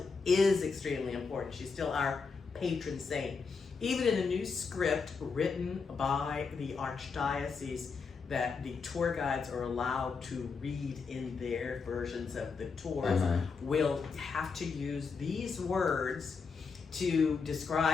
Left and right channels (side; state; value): right; quieter; 5.1 dB